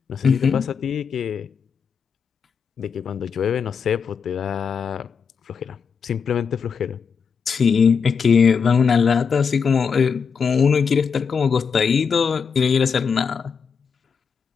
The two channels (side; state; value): right; quieter; 6.1 dB